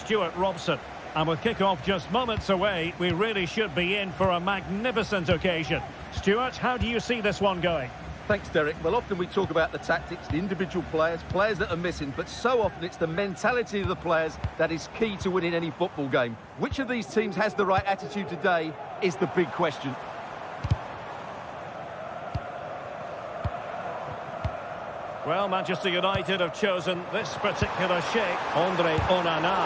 Robson. And with kick-off just moments away, we really should be in for a magnificent occasion. Stuart, how do you see this one going? Thanks, Derek. Well, often we talk about the tactics, the individual players that are missing, but so often it's the mentality of the players that is key to winning any football game. Which of these teams has the right attitude today is the big question. Well, Manchester United have chosen this particular shape. Andre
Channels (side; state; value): both; identical; correlation 1.00